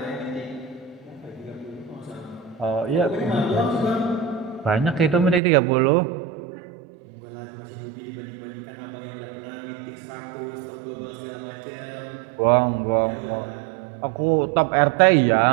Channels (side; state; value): left; drops out; at 5.4 s